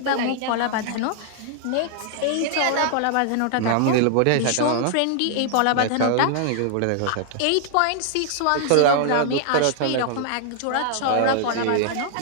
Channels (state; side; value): different; both; correlation -0.01